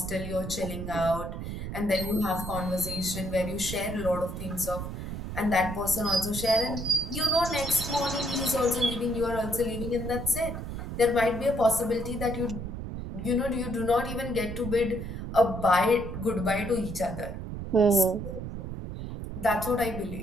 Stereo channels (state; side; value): noise; right; rumble, 6 dB below the sound